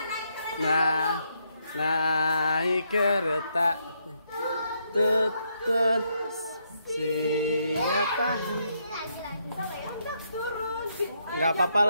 Nah, naik kereta tutut siapa? Nggak apa-apa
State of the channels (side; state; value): both; inverted; correlation -0.76